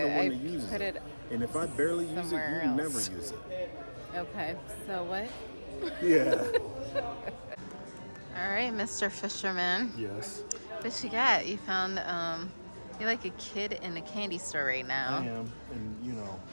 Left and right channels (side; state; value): both; inverted; correlation -1.00